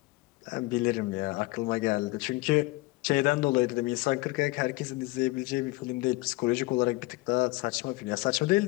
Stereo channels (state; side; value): quieter; right; 22.0 dB